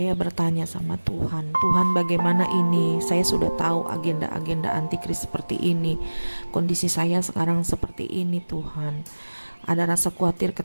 bertanya sama Tuhan, Tuhan bagaimana ini? Saya sudah tahu agenda-agenda antikris seperti ini. Kondisi saya sekarang seperti ini Tuhan. Ada rasa khawatir,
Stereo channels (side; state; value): both; inverted; correlation -1.00